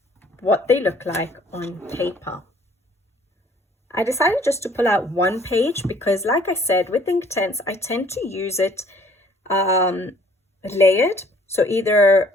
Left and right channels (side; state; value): both; normal; correlation 0.58